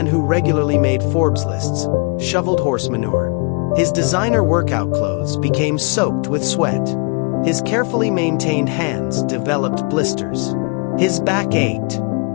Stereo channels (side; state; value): right; quieter; 34.3 dB